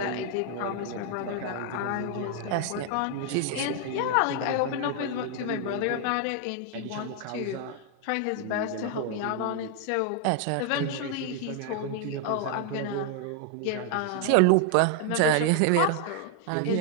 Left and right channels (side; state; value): both; different; correlation 0.00